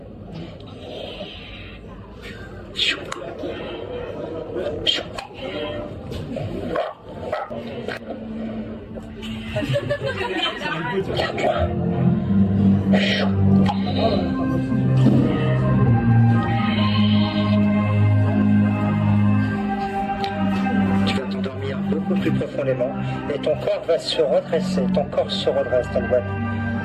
Regarde-moi. Tu vas t'endormir beaucoup plus profondément et ton corps va se redresser. Ton corps se redresse, Tanguane.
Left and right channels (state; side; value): identical; both; correlation 1.00